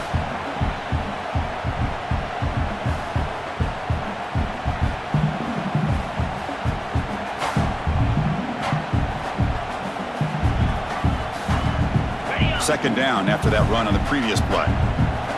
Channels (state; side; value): identical; both; correlation 1.00